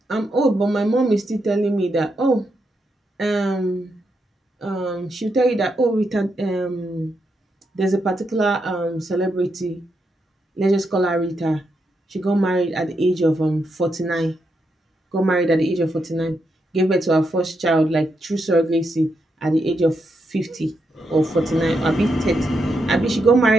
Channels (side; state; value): both; normal; correlation 0.82